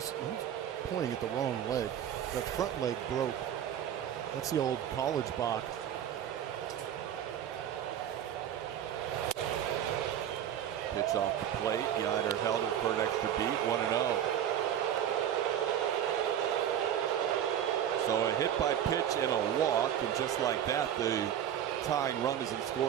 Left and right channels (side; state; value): left; quieter; 10.0 dB